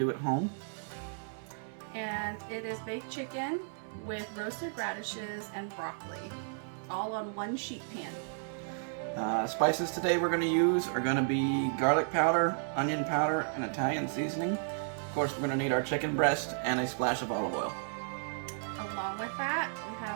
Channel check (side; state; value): left; silent; digital silence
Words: at home. And it is baked chicken with roasted radishes and broccoli, all on one sheet pan. Spices today we're going to use are going to be garlic powder, onion powder, and Italian seasoning. Of course, we're going to need our chicken breast and a splash of olive oil. Along with that, we